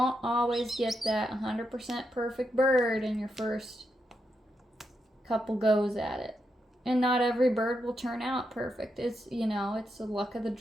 always get that 100% perfect bird in your first couple goes at it. And not every bird will turn out perfect. It's, you know, it's the luck of the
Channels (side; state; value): both; normal; correlation 0.83